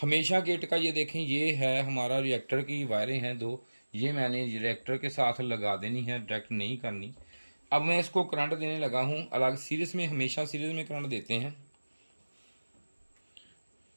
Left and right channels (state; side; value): inverted; both; correlation -1.00